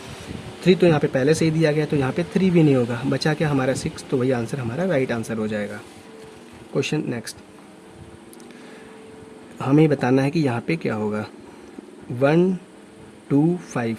3 तो यहाँ पे पहले से ही दिया गया, तो यहाँ पे 3 भी नहीं होगा, बचा क्या हमारा 6, तो वही आंसर हमारा राइट आंसर हो जाएगा। क्वेश्चन नेक्स्ट, हमें बताना है कि यहाँ पे क्या होगा। 1 2 5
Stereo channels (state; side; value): identical; both; correlation 1.00